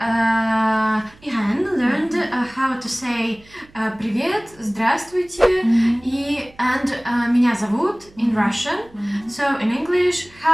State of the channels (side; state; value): right; noise; hum, 27 dB below the sound